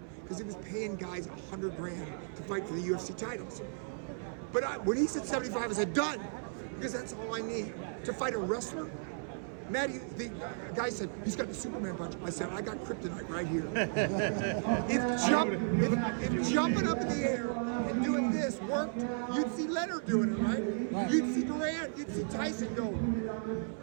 because he was paying guys $100 grand to fight for the UFC titles. But when he said 75, I said done. Because that's all I need to fight a wrestler. The guy said, he's got the Superman punch. I said, I got kryptonite right here. If jumping up in the air and doing this worked, you'd see Leonard doing it, right? You'd see Durant, you'd see Tyson go.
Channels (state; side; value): silent; left; 55 dB below the other